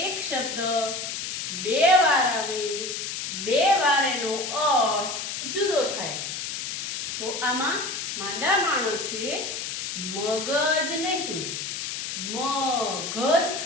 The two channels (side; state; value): left; noise; hiss, 4 dB below the sound